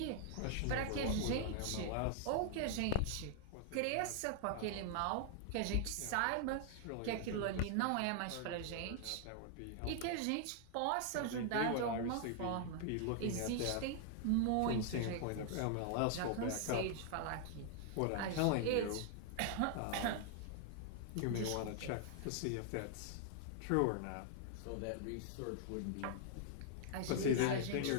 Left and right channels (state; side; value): different; both; correlation -0.01